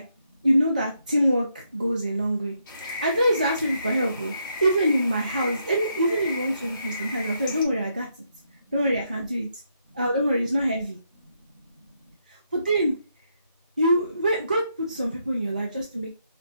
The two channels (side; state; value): both; inverted; correlation -0.78